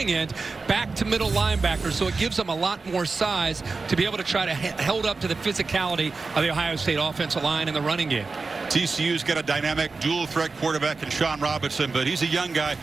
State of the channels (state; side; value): quieter; left; 4.1 dB